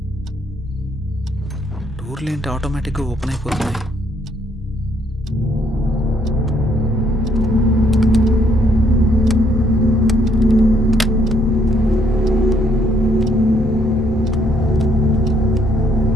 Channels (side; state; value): both; normal; correlation 0.68